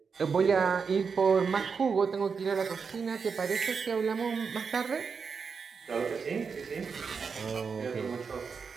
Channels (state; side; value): quieter; left; 5.6 dB